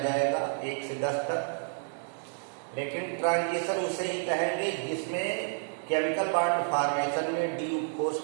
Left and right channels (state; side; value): silent; left; digital silence